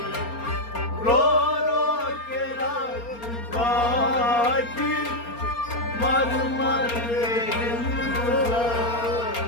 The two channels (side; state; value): right; late; 4.3 ms